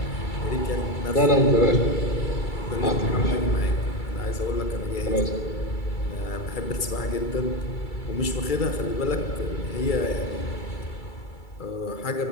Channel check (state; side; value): late; right; 2.3 ms